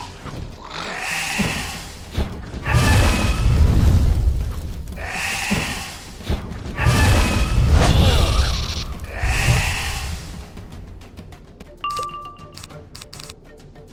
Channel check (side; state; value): both; identical; correlation 1.00